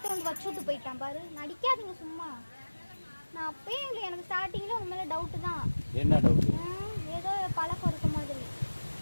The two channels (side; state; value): both; inverted; correlation -1.00